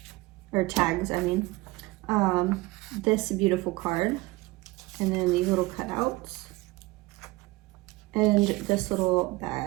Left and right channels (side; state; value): left; quieter; 21.0 dB